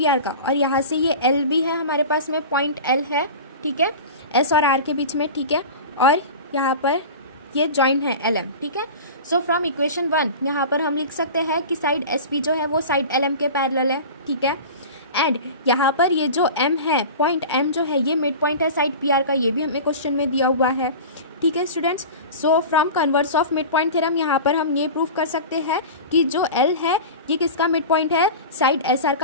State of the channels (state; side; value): inverted; both; correlation -0.32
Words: का, और यहाँ से ये L भी है हमारे पास में, पॉइंट L है। ठीक है, S और R के बीच में। ठीक है, और यहाँ पर ये जॉइंट है LM। ठीक है, सो फ्रॉम इक्वेशन 1 यहाँ पर हम लिख सकते हैं कि साइड SP जो है वो साइड LM के पैरेलल है। ठीक है, एंड यहाँ पर ये जो M है, पॉइंट M जो है ये मिड पॉइंट है साइड PR का, ये भी हमें क्वेश्चन में दिया हुआ है। ठीक है students, so from converse of mid point theorem यहाँ पर हम ये प्रूव कर सकते हैं कि जो L है ये किसका मिड पॉइंट है, साइड SR